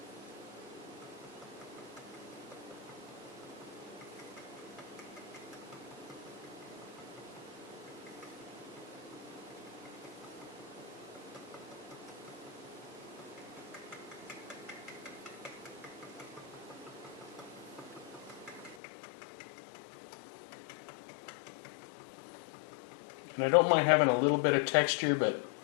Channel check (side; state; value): right; drops out; at 18.8 s